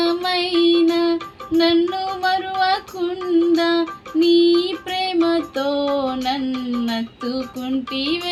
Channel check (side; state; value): both; identical; correlation 1.00